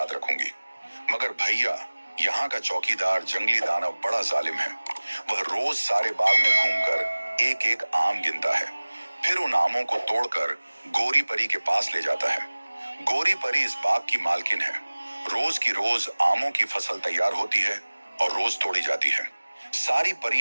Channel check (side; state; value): both; inverted; correlation -1.00